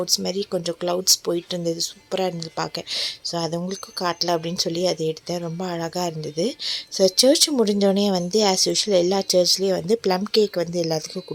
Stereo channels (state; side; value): identical; both; correlation 1.00